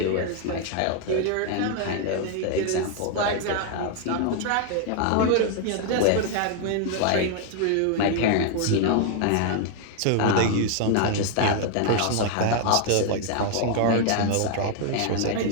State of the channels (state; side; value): different; both; correlation 0.00